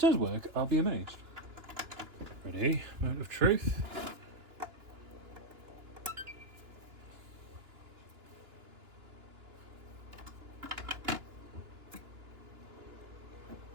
work, I'll be amazed. Ready? Moment of truth.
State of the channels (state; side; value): late; left; 2.9 ms